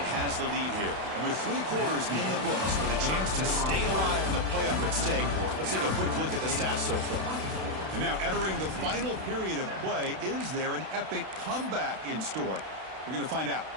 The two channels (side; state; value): left; late; 32 ms